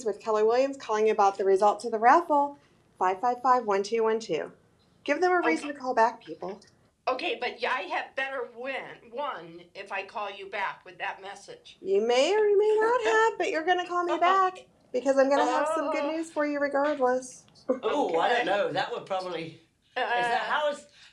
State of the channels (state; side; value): identical; both; correlation 1.00